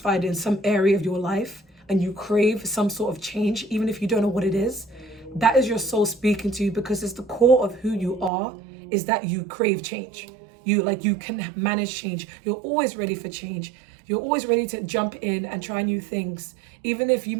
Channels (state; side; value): drops out; left; at 8.3 s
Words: in some area of your life and you crave some sort of change, even if you don't know what it is. That is your soul speaking to you, because it's the core of who you are, is that you crave change. You can manage change. You're always ready for change. You're always ready to jump in and try new things, even if you